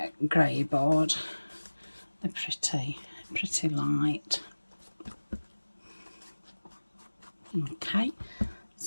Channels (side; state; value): both; inverted; correlation -1.00